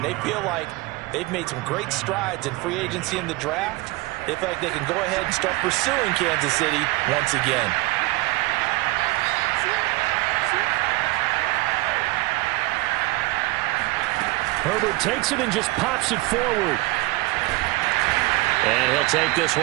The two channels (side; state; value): left; quieter; 21.2 dB